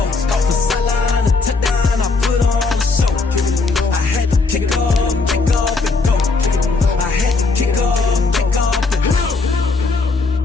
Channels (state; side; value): quieter; right; 4.0 dB